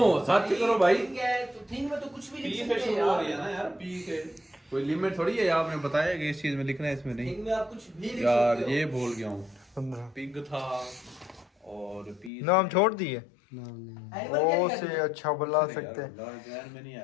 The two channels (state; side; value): drops out; right; at 12.3 s